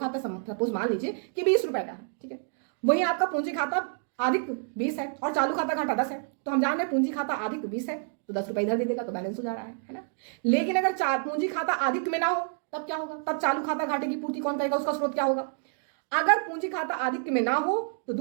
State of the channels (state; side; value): silent; left; 59 dB below the other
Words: सपोज मान लीजिए कि 20 रुपए का है, ठीक है, वही आपका पूंजी खाता आधिक्य 20 है और चालू खाता घाटा 10 है, तो हम जान रहे हैं पूंजी खाता आधिक्य 20 है तो 10 रुपए इधर दे देगा तो बैलेंस हो जा रहा है ना। लेकिन अगर पूंजी खाता आधिक्य में ना हो तब क्या होगा? तब चालू खाता घाटे की पूर्ति कौन करेगा? उसका स्रोत क्या होगा? अगर पूंजी खाता आधिक्य में ना हो तो